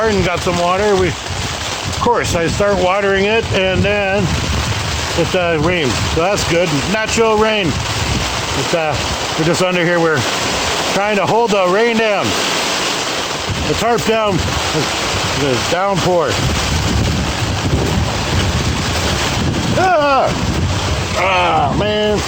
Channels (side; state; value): both; identical; correlation 1.00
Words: got some water. Of course, I start watering it and then it rains. So that's good. Natural rain. We're just under here. We're trying to hold the rain down. The tarp down. The downpour. Man.